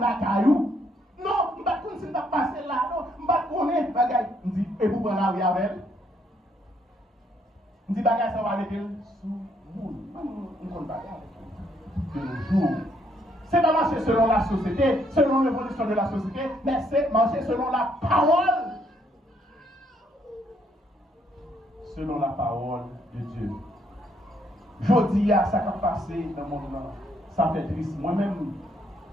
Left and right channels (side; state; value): both; normal; correlation 0.71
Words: caillou. Non, je ne vais pas continuer à passer là. Non, je ne vais pas connaître. Il dit, et vous prenez la rue avec elle. Il dit, bagage, ça va aller sous vous. On ne compte pas de nos jours. C'est pas marcher selon la société, selon l'évolution de la société, mais c'est marcher selon la parole. Selon la parole de Dieu. Je dis à ça qui a passé dans mon monde, ça fait triste. Moi-même,